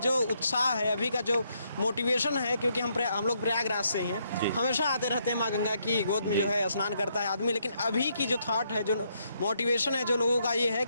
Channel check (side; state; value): both; inverted; correlation -0.75